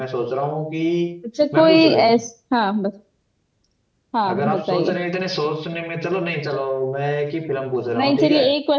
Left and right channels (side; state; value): both; identical; correlation 1.00